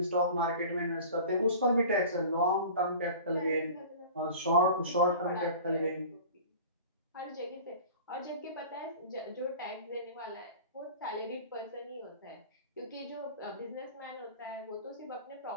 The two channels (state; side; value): inverted; both; correlation -0.40